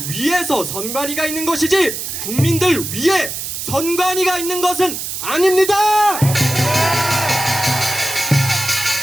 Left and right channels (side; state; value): right; noise; hiss, 6 dB below the sound